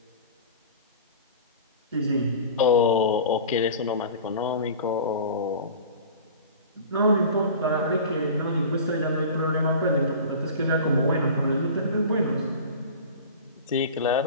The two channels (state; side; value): inverted; both; correlation -0.37